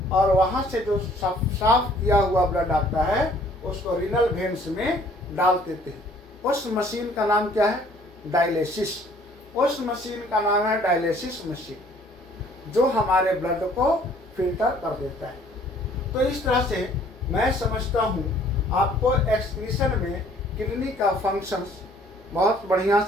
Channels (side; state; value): both; normal; correlation 0.58